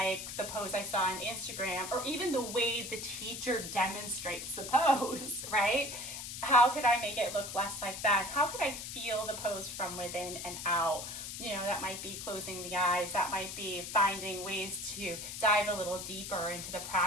the pose I saw on Instagram, or even the way the teacher demonstrates the pose, right? How could I make it look less like that? How could I feel the pose from within and out? That might be closing the eyes. That might be finding ways to dive a little deeper into the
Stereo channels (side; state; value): left; noise; hiss, 8 dB below the sound